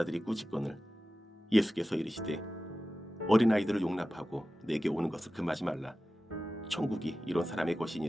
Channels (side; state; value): both; normal; correlation 0.94